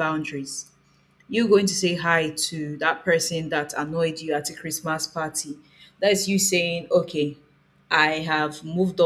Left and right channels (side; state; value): both; identical; correlation 1.00